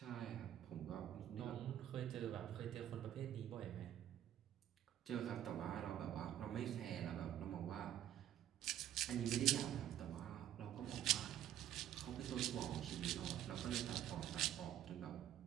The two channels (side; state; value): left; quieter; 11.4 dB